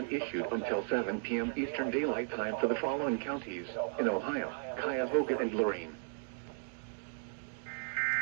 issued until 7 p.m. Eastern Daylight Time for the following counties in Ohio: Cuyahoga and Lorraine.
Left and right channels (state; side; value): silent; left; 54 dB below the other